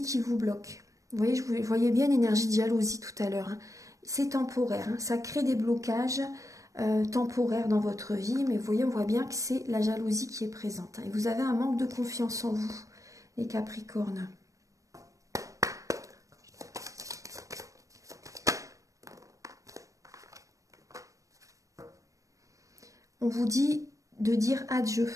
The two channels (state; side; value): late; left; 0.16 ms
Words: qui vous bloque. Vous voyez, je voyais bien l'énergie de jalousie tout à l'heure. Hein. C'est temporaire, hein. Ça crée des blocages temporaires dans votre vie, mais vous voyez, on voit bien que c'est la jalousie qui est présente. Hein. Et vous avez un manque de confiance en vous, les Capricornes. On vous dit de dire adieu.